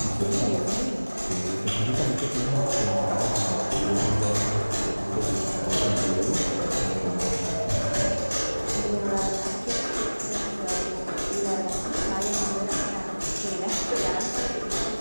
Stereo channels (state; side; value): inverted; both; correlation -1.00